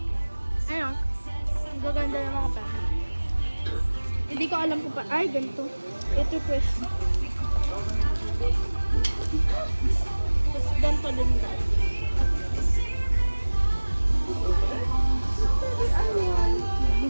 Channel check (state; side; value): inverted; both; correlation -1.00